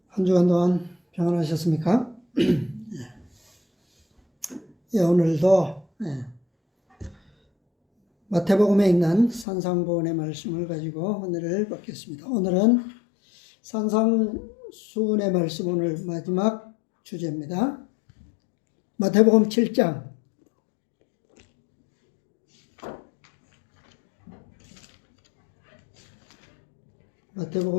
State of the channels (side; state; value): right; drops out; at 9.5 s